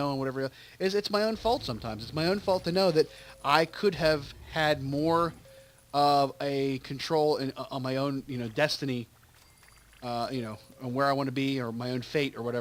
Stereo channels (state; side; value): identical; both; correlation 1.00